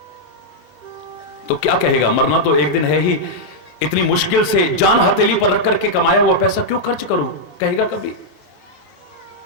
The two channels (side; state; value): both; normal; correlation -0.04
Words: तो क्या कहेगा, मरना तो एक दिन है ही, इतनी मुश्किल से जान हथेली पर रख करके कमाया हुआ पैसा क्यों खर्च करूं, कहेगा कभी।